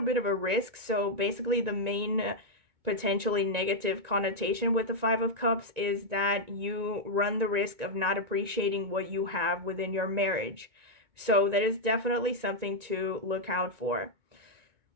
bit of a risk. So basically the main potentially negative connotation with the Five of Cups is that you run the risk of not appreciating what you have within your marriage. So that is definitely something to look out for.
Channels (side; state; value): left; late; 1.9 ms